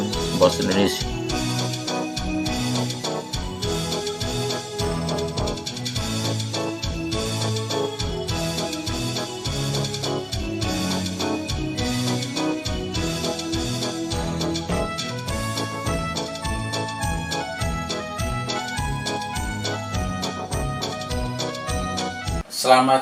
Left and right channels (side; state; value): both; identical; correlation 1.00